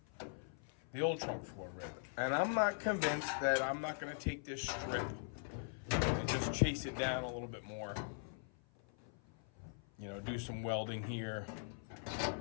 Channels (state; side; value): silent; right; 50 dB below the other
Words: the old trunk floor rib. And I'm not convinced that I'm not gonna take this strip and just chase it down a little bit more. You know, do some welding here